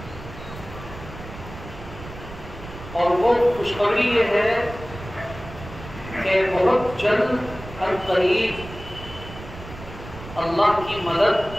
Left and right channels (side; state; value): right; noise; rumble, 14 dB below the sound